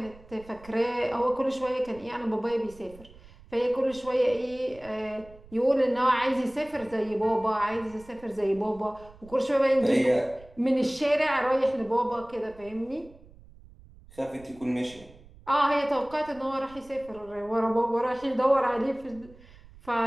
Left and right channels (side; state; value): right; noise; rumble, 23 dB below the sound